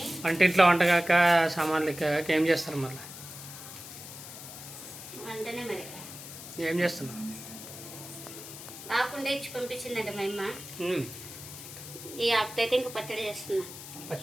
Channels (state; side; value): noise; left; hiss, 13 dB below the sound